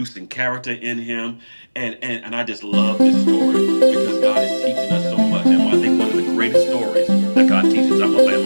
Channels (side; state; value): both; inverted; correlation -1.00